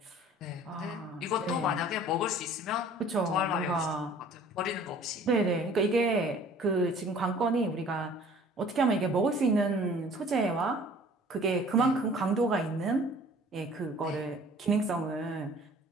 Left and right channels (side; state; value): both; normal; correlation 0.51